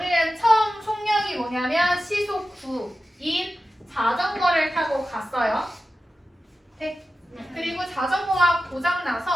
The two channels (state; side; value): normal; both; correlation 0.94